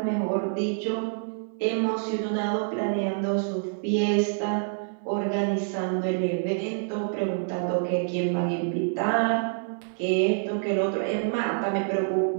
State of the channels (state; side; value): silent; left; 60 dB below the other